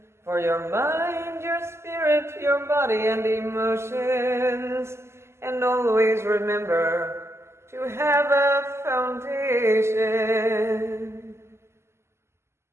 For your mind, your spirit, your body, and emotions. And always remember to have a foundation.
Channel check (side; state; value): left; late; 0.13 ms